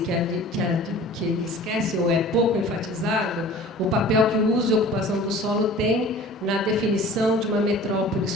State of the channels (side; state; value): both; normal; correlation 0.44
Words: que esquece ou é pouco enfatizado o papel que o uso e ocupação do solo tem na definição de uma metrópole